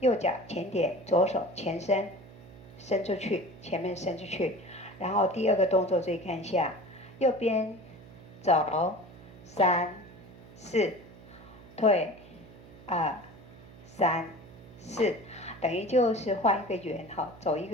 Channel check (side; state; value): right; noise; hum, 19 dB below the sound